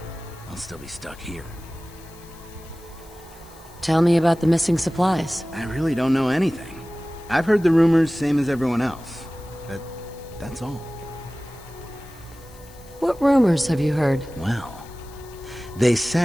I'll still be stuck here. Tell me about the missing supplies. I really don't know anything. I've heard the rumors, same as everyone else. But that's all. What rumors have you heard? Well, they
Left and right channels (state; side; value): noise; left; hiss, 24 dB below the sound